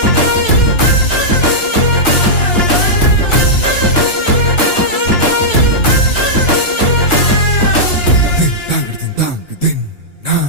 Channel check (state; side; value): late; right; 2.9 ms